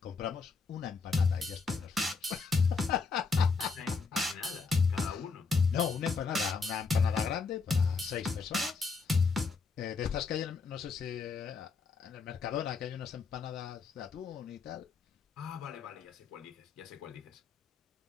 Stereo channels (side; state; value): right; quieter; 4.7 dB